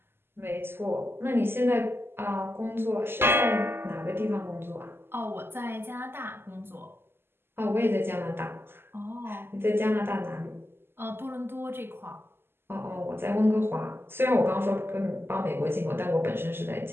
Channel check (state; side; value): late; left; 0.11 ms